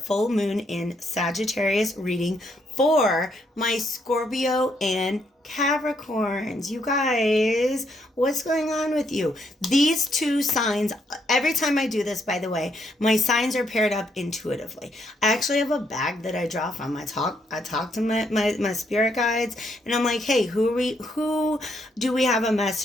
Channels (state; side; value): normal; both; correlation 0.74